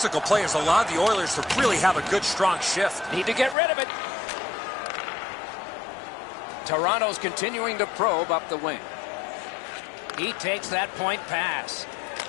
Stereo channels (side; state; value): right; drops out; at 3.6 s